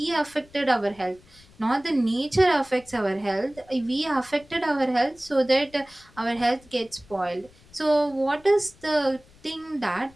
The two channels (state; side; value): noise; left; rumble, 27 dB below the sound